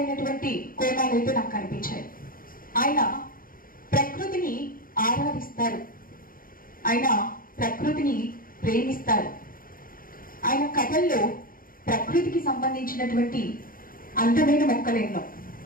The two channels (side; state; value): right; late; 0.41 ms